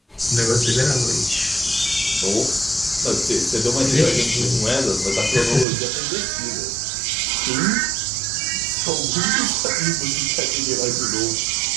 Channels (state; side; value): drops out; left; at 5.7 s